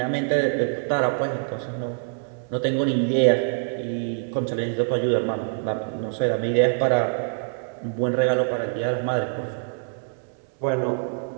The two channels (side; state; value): left; silent; 62 dB below the other